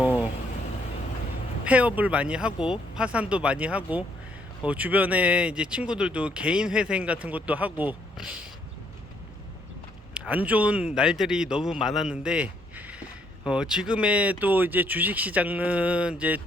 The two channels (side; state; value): both; normal; correlation 0.70